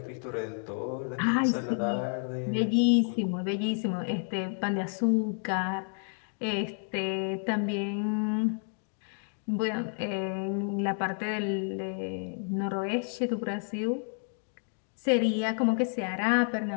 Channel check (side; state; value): right; silent; 58 dB below the other